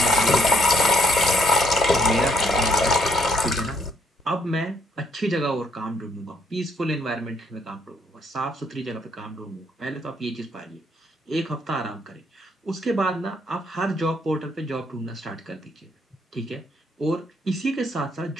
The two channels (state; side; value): normal; both; correlation 0.69